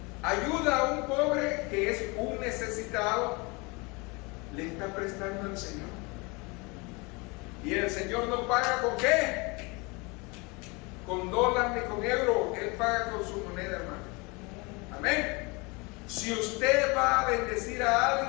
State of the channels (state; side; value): quieter; right; 27.6 dB